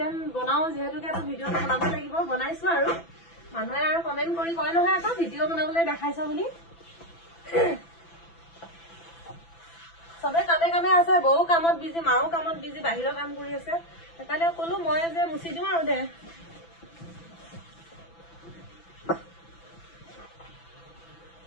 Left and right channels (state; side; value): late; right; 6.0 ms